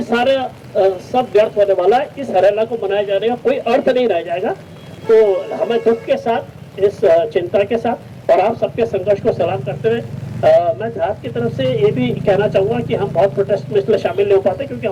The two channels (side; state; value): both; identical; correlation 1.00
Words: सारे सब व्यर्थ होने वाला है। इस हरेला को मनाए जाने का कोई अर्थ नहीं रह जाएगा। तो हमें दुख के साथ, इस चिंता के साथ और आप सबके संघर्ष को सलाम करते हुए मैं धाद की तरफ से ये भी कहना चाहूँगा कि हम बहुत प्रोटेस्ट में इसलिए शामिल नहीं हो पाते क्योंकि